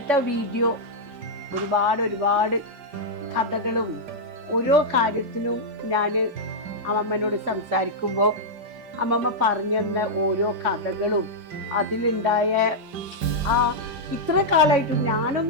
വീഡിയോ ഒരുപാട് കഥകളും ഓരോ കാര്യത്തിനും ഞാൻ അമ്മമ്മനോട് സംസാരിക്കുമ്പോൾ അമ്മമ്മ പറഞ്ഞു തന്ന ഓരോ കഥകളും അതിലുണ്ടായ ഇത്ര കാലമായിട്ടും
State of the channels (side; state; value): left; late; 5.0 ms